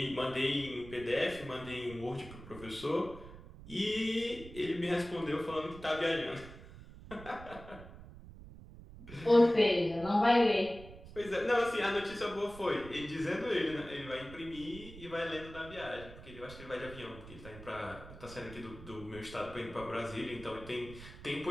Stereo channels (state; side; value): noise; right; rumble, 16 dB below the sound